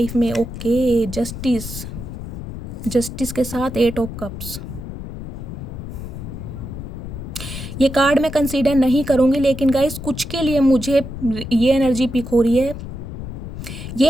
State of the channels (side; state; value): left; noise; rumble, 9 dB below the sound